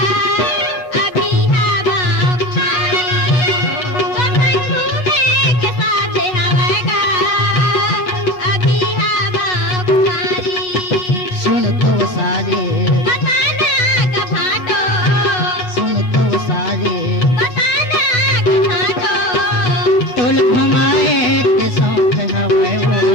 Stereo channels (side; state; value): right; late; 8.1 ms